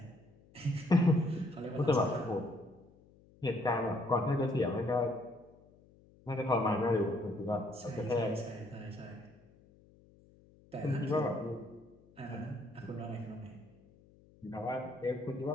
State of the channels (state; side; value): noise; left; hum, 27 dB below the sound